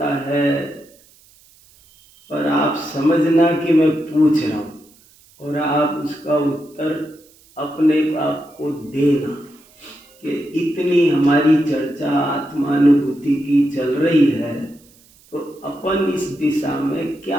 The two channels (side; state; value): right; noise; hiss, 29 dB below the sound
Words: है। पर आप समझना कि मैं पूछ रहा हूँ और आप उसका उत्तर अपने आप को देना कि इतनी हमारी चर्चा आत्मानुभूति की चल रही है तो अपन इस दिशा में क्या